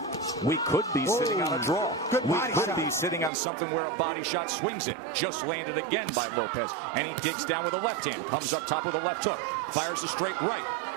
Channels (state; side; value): drops out; left; at 3.3 s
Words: We could be sitting on a draw. We could be sitting on something where a body shot swings it. Just landed again by Lopez. And he digs down with a left hand. Comes up top with a left hook. Fires a straight right.